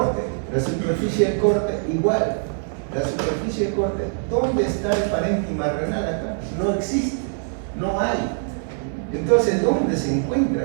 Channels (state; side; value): silent; left; 63 dB below the other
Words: la superficie del corte igual. La superficie del corte, ¿dónde está el parénquima renal acá? No existe, no hay. Entonces, ¿dónde se encuentra